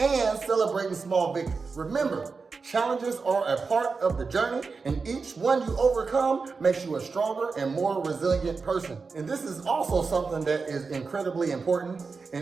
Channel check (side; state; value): left; quieter; 4.7 dB